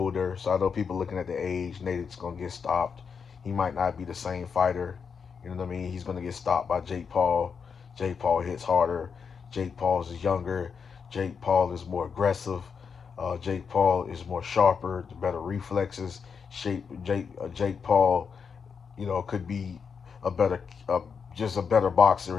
so I know people looking at the age. Nate is gonna get stopped. He might not be the same fighter. You know what I mean? He's gonna get stopped by Jake Paul. Jake Paul hits harder. Jake Paul is younger. Jake Paul is more aggressive. Jake Paul is more sharper, the better reflexes. Jake Paul, could be a better. just a better boxer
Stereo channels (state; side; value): quieter; right; 6.1 dB